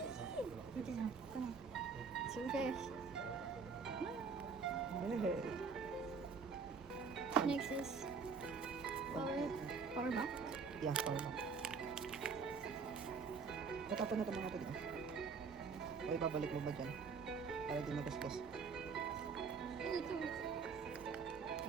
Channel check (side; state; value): left; quieter; 5.2 dB